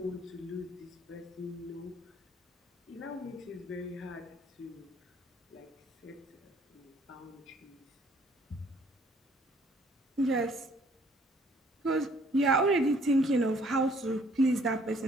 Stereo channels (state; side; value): normal; both; correlation 0.61